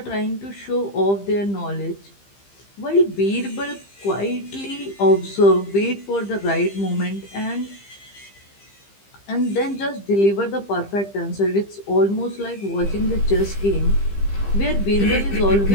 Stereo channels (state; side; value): late; right; 15 ms